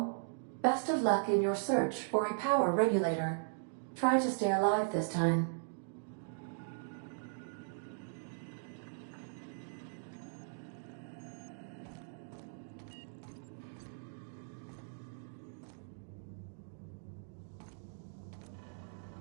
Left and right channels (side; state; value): left; silent; digital silence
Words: Best of luck in your search for a power regulator. Try to stay alive this time.